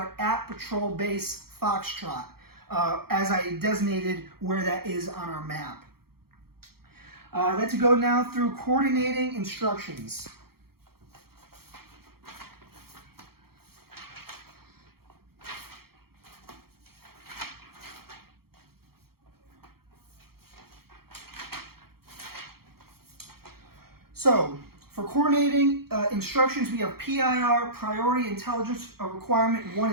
at Patrol Base Foxtrot, as I designated where that is on our map. Let's go now through coordinating instructions. So, for coordinating instructions, we have PIR, Priority Intelligence Requirement 1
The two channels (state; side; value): late; left; 0.94 ms